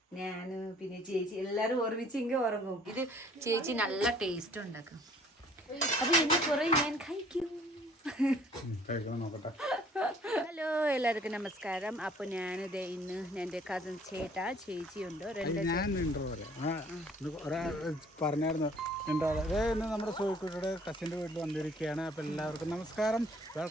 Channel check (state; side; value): normal; both; correlation 0.57